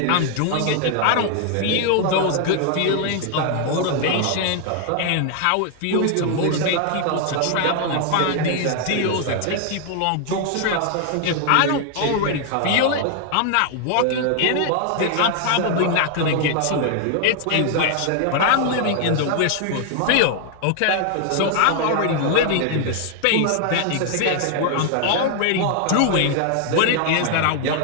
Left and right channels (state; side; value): different; both; correlation 0.00